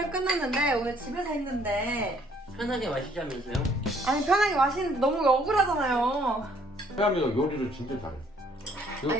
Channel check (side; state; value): both; normal; correlation 0.63